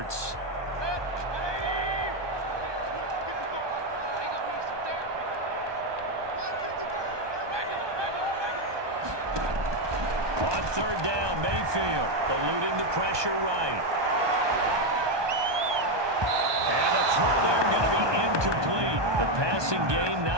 On 3rd down, Mayfield eluding the pressure right. And the throw there going to be incomplete. The passing game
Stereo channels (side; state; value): left; late; 1.2 ms